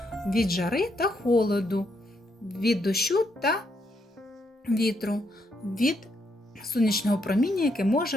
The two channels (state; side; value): normal; both; correlation 0.77